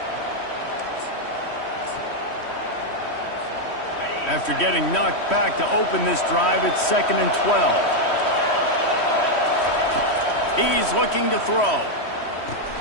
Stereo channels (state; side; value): late; right; 3.1 ms